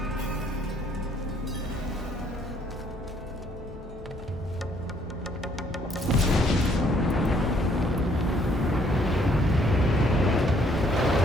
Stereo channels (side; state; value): both; normal; correlation 0.65